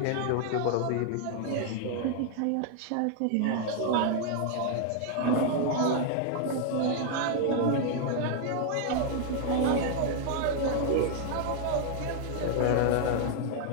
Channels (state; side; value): different; both; correlation 0.00